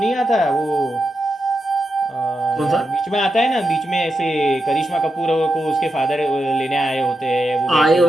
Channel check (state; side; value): normal; both; correlation 0.87